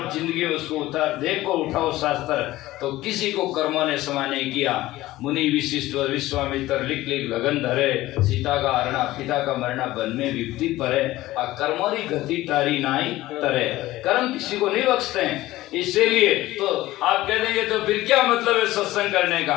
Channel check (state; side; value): quieter; right; 16.8 dB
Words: जिंदगी में उसको उतार देखो, उठाओ शास्त्र, तो किसी को कर्मों ने क्षमा नहीं किया। मुनि विशिष्ट और विश्वामित्र लिख लगन धरे, सीता का हरणा पिता का मरना बन में विपत्ति परे, और कर्मोरी गति तारी नाई तरे। कर्म किसी को नहीं बख्शते हैं। इसीलिए तो आप कह देंगे तो फिर क्या मतलब है सत्संग करने